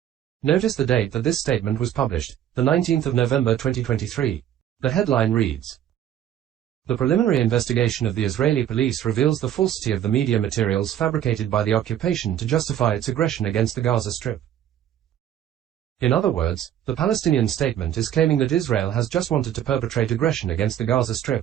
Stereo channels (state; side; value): quieter; left; 10.8 dB